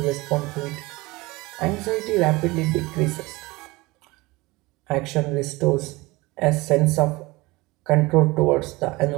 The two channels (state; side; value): quieter; left; 22.3 dB